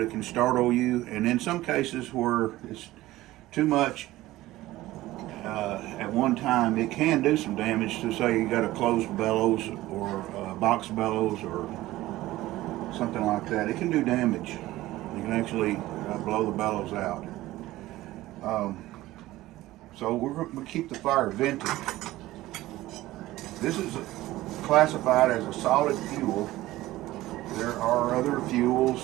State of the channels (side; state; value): left; quieter; 16.8 dB